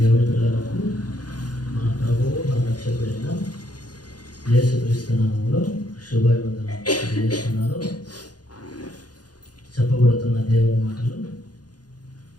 పిల్లలకు మన ప్రభువు మన రక్షకుడైన యేసుక్రీస్తు నామములో శుభాభివందనం తెలియజేస్తున్నాను. చెప్పబడుతున్న దేవుని మాటలు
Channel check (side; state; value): right; late; 0.69 ms